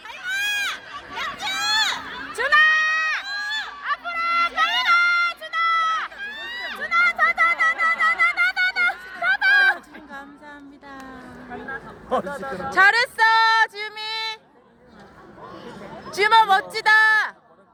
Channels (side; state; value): both; identical; correlation 1.00